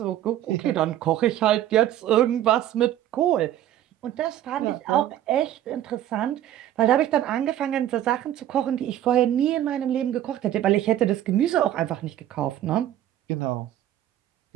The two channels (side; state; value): left; quieter; 12.1 dB